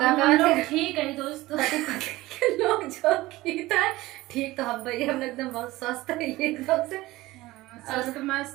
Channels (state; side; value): quieter; left; 18.5 dB